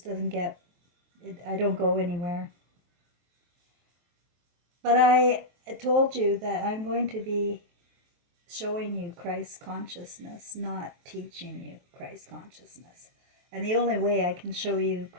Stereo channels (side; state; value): left; late; 23 ms